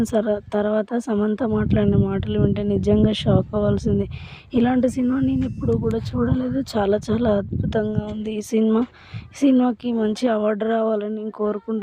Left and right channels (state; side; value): identical; both; correlation 1.00